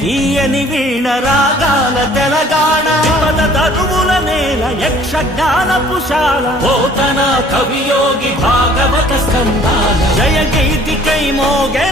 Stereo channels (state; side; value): normal; both; correlation 0.55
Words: తీయని వీణ రాగాల తెలంగాణ. పద తరువుల నేల యక్షగానపుశాల, పోతన కవియోగి భాగవత స్కందాల. జయ గీతికై